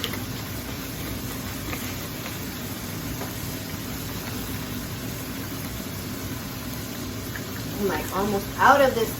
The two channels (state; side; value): identical; both; correlation 1.00